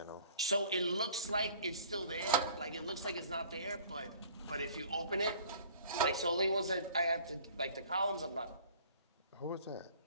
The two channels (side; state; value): both; inverted; correlation -0.52